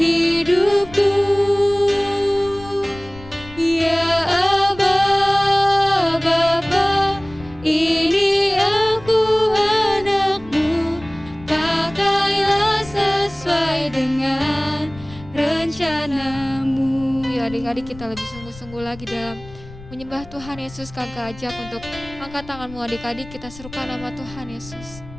hidupku. Ya Aba, Bapa, ini aku anakmu, pakailah sesuai dengan rencanamu. Ya adik-adik kita lebih sungguh-sungguh lagi dalam menyembah Tuhan Yesus. Kakak ajak untuk angkat tanganmu adik-adik, kita serukan nama Tuhan Yesus.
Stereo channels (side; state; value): left; noise; rumble, 18 dB below the sound